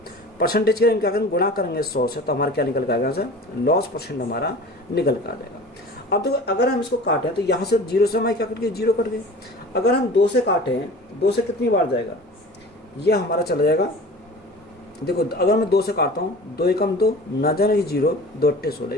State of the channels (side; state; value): both; normal; correlation 0.39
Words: परसेंटेज के क्या करेंगे, गुणा करेंगे 100 से, तो हमारा क्या निकल कर आएगा, लॉस परसेंट हमारा निकल कर आ जाएगा। अब देखो अगर हम इसको काटें तो यहाँ से 0 से हमारे क्या कट गए, 0 कट गए। अगर हम 2 से काटें, 2 से कितनी बार जाएगा, ये हमारा चला जाएगा, देखो अगर मैं 2 से काटता हूँ, 2 एकम 2, ना जाने 0, 2 अट्ठे 16,